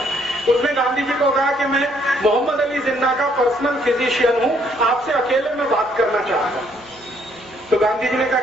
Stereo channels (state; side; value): noise; right; hum, 27 dB below the sound